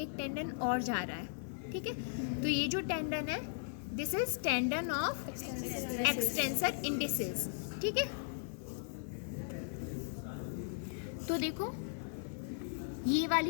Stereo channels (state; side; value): silent; right; 53 dB below the other